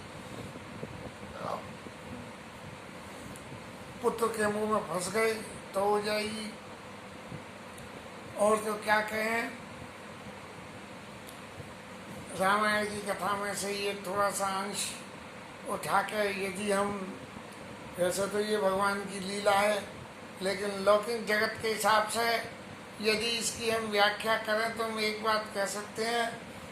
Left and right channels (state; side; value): identical; both; correlation 1.00